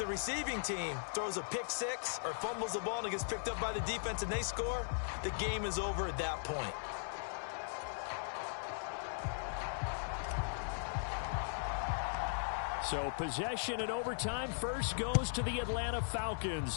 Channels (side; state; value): right; silent; digital silence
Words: receiving team throws a pick six or fumbles the ball and it gets picked up by the defense and they score, the game is over at that point. So possession in overtime first goes to the Atlanta